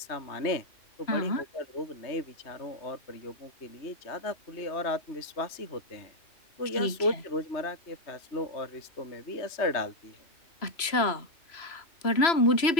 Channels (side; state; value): right; late; 3.0 ms